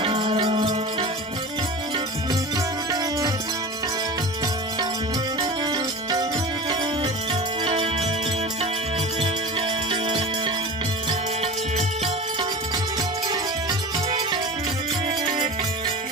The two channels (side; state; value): both; normal; correlation 0.32